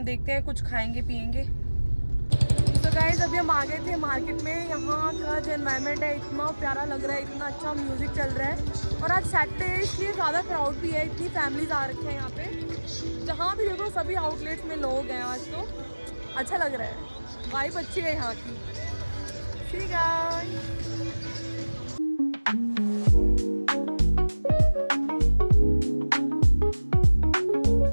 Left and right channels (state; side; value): inverted; both; correlation -1.00